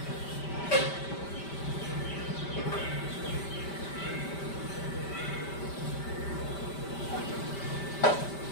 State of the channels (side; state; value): right; late; 5.1 ms